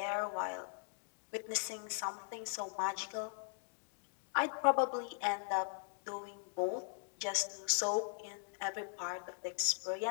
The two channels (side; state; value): right; silent; digital silence